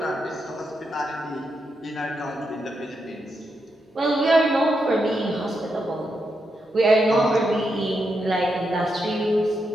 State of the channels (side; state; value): both; normal; correlation 0.83